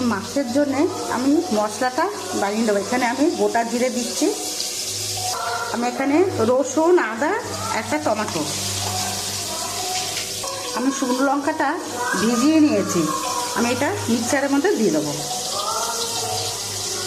মাছের জন্যে আমি মশলাটা বানিয়ে দেবো। এখানে আমি গোটা জিরে দিচ্ছি। আমি এখানে রসুন, আদা, একটা টমেটো, আমি শুকনো লঙ্কাটা ভিজিয়ে নিয়েছি। আমি এটা মিক্সারের মধ্যে দিয়ে দেবো।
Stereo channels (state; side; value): identical; both; correlation 1.00